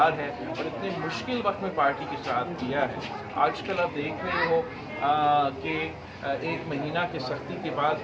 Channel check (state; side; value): identical; both; correlation 1.00